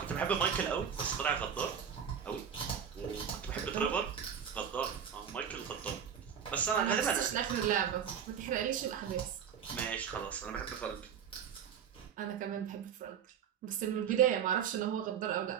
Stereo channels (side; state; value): left; quieter; 7.9 dB